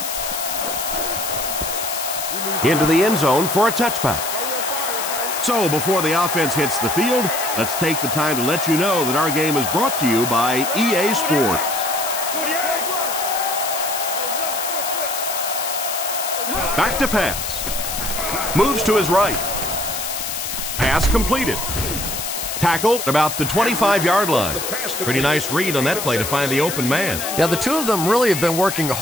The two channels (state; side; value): noise; left; hiss, 4 dB below the sound